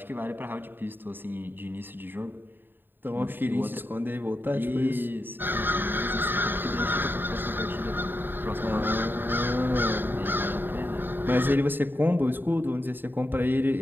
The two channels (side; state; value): left; late; 0.094 ms